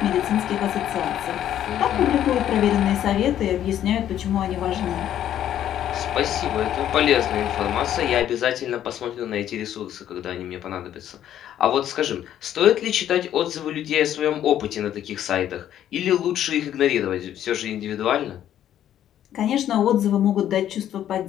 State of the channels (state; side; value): quieter; right; 11.1 dB